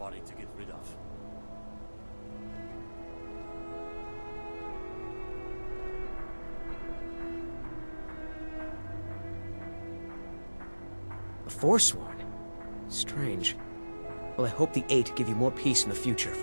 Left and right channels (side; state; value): both; inverted; correlation -1.00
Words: to get rid of. A Forsworn? Strange. Well, I hope the 8 give you more peace in the future